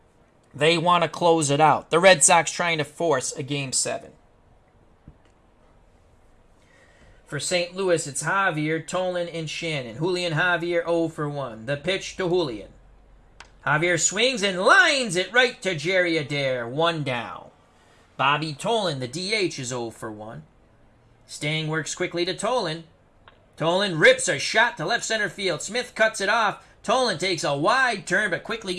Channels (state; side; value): identical; both; correlation 1.00